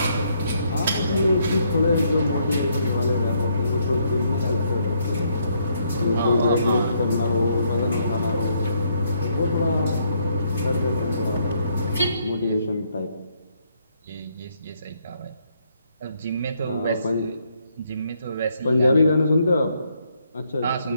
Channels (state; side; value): inverted; both; correlation -0.72